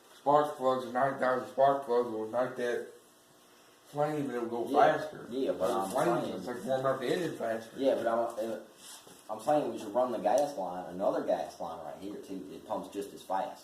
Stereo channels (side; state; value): both; identical; correlation 1.00